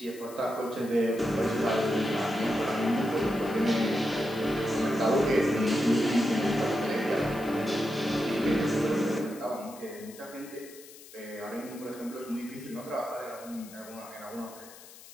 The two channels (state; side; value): noise; left; hiss, 19 dB below the sound